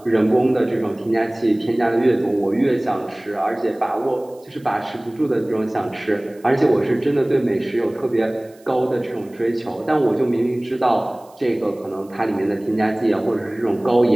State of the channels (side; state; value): right; noise; hiss, 30 dB below the sound